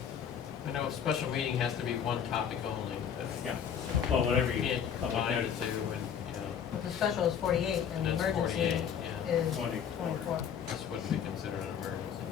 I know a special meeting has to be one topic only, but. Yeah. Well, whatever you Can't public combine the notice. two, and, you know, the special is 48 and the That's emergency 48, yeah. is 24. 24. this wouldn't be considered an emergency.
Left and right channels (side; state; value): right; quieter; 8.1 dB